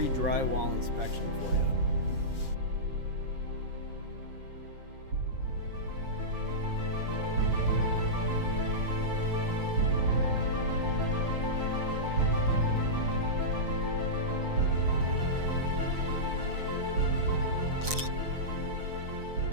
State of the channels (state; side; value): late; left; 7.4 ms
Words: inspection for you.